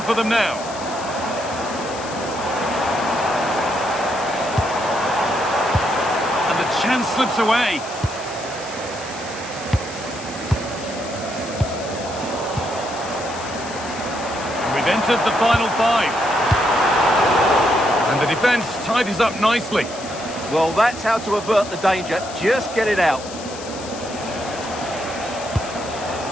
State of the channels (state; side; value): noise; left; hiss, 13 dB below the sound